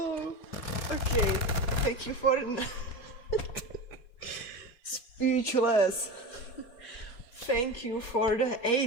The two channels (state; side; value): late; right; 4.2 ms